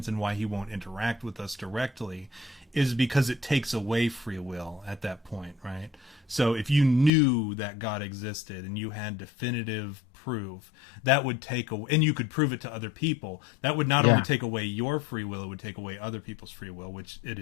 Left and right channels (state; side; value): drops out; right; at 7.1 s